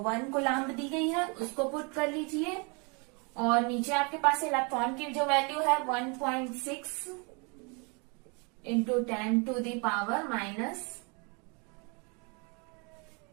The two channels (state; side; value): quieter; left; 32.5 dB